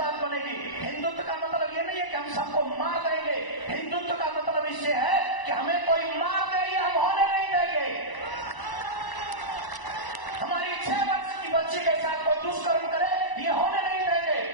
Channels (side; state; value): right; late; 1.0 ms